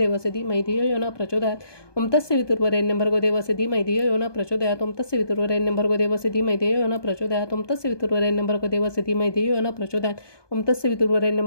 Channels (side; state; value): right; late; 1.2 ms